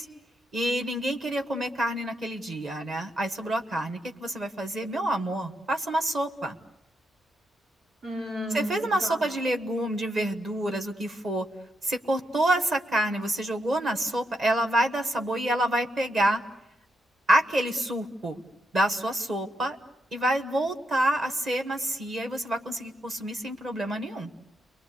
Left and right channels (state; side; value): normal; both; correlation 0.81